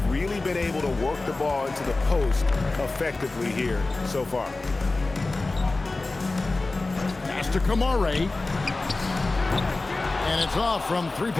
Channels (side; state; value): right; quieter; 3.3 dB